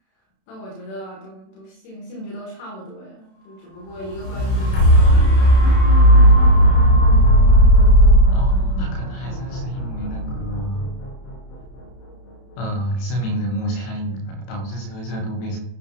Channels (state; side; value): late; right; 31 ms